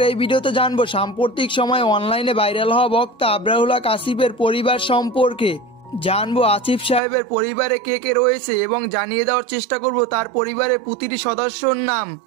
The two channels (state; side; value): drops out; left; at 7.0 s